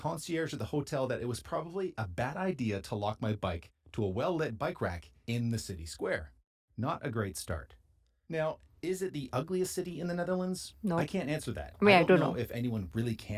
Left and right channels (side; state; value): both; identical; correlation 1.00